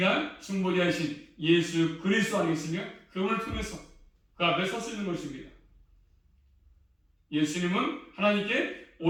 중보자이신 예수 그리스도 아니겠습니까? 그분을 통해서 그 앞에 설 수 있는 것입니다. 예수님은 하나님께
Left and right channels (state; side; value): identical; both; correlation 1.00